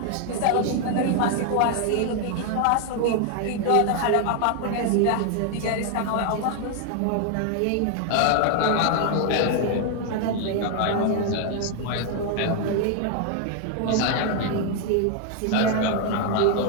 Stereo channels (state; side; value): different; both; correlation 0.00